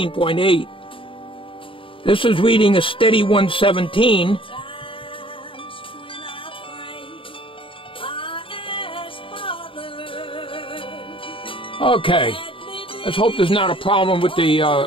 This is reading a steady 117. Okay, let's hope there's not a problem with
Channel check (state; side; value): late; right; 0.25 ms